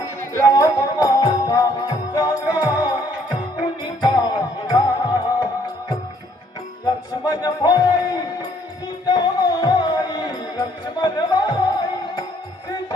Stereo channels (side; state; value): both; normal; correlation 0.65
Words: राम माता जागा कुणी पाहिला लक्ष्मण भाई सीतामाई लक्ष्मण भाई